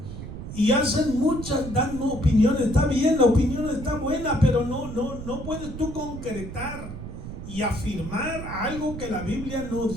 Y hacen muchas, dan opiniones. Está bien, la opinión está buena, pero no puedes tú concretar y afirmar algo que la Biblia no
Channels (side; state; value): right; noise; rumble, 9 dB below the sound